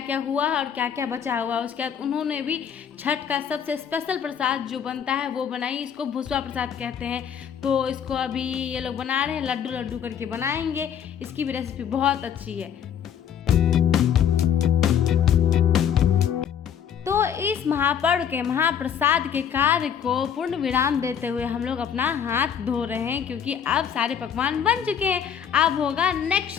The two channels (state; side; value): quieter; right; 8.4 dB